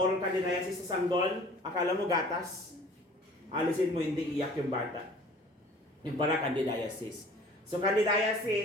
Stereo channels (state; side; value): normal; both; correlation 0.49